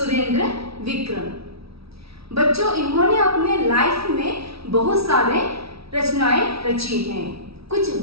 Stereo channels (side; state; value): left; late; 0.76 ms